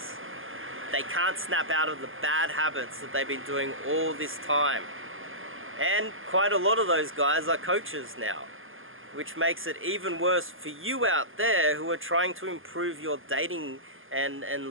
They can't snap out of the bad habits that they've been doing all this time. And quite a lot of those guys are coaches now, which makes it even worse for you out there who are trying to improve your dating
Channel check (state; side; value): late; left; 0.59 ms